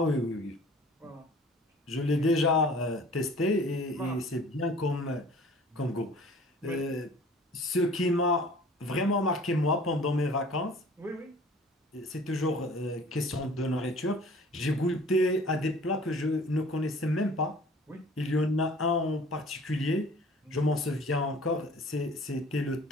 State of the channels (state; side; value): normal; both; correlation 0.49